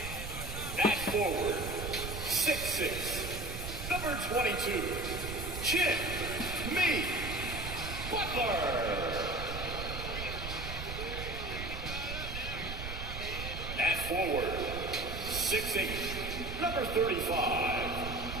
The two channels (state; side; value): noise; right; rumble, 7 dB below the sound